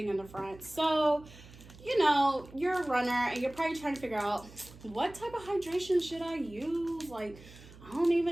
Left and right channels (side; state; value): right; noise; hum, 20 dB below the sound